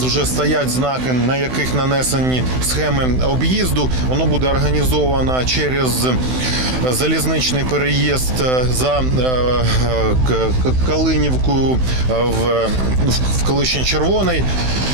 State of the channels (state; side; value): late; left; 16 ms